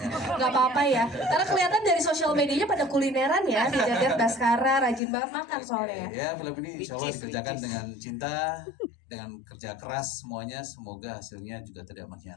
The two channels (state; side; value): drops out; right; at 5.0 s